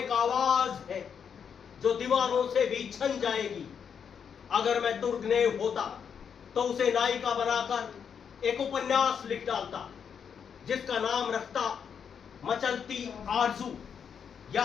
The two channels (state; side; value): quieter; right; 7.2 dB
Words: आवाज है जो दीवारों से भी छन जाएगी। अगर मैं दुर्गनेव होता तो उसे नायिका बनाकर एक उपन्यास लिख डालता जिसका नाम रखता मचलती आरजू